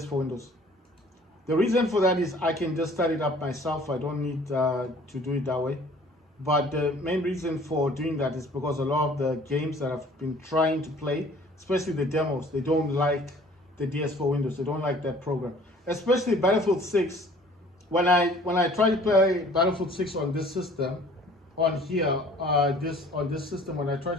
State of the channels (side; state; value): both; normal; correlation 0.52